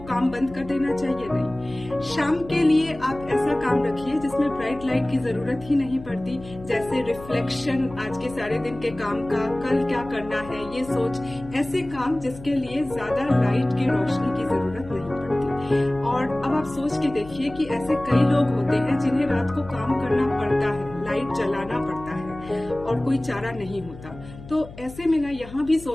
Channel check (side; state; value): left; noise; hum, 16 dB below the sound